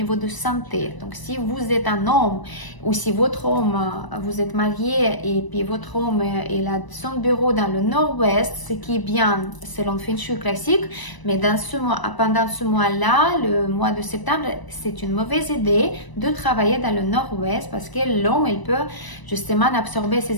de santé. Donc si vous êtes un homme ou si votre homme, vous êtes marié et puis votre homme il a son bureau dans le nord-ouest, ce qui est bien selon Feng Shui classique, mais pendant ce mois-là, le mois de septembre, c'est une mauvaise idée de travailler dans le nord-ouest parce que l'homme il peut justement absorber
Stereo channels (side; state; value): right; late; 1.0 ms